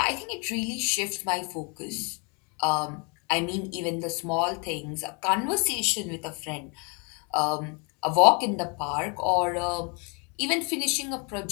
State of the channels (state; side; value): quieter; right; 33.8 dB